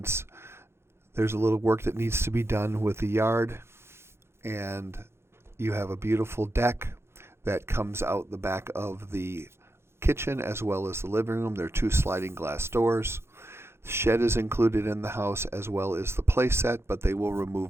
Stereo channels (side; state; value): left; late; 0.12 ms